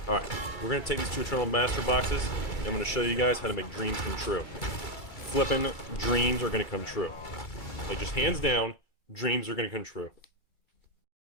Alright, we're going to take these 2 Eternal Master boxes, and I'm going to show you guys how to make dreams come true. Flipping dreams are going to come true. Like, just hands down, dreams are going to come true.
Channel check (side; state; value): right; late; 2.3 ms